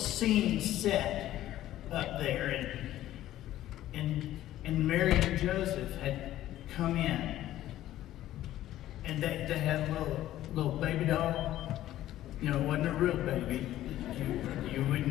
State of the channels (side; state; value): right; quieter; 13.7 dB